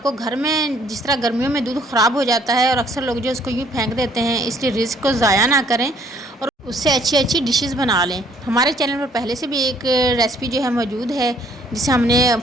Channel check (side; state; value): both; normal; correlation 0.62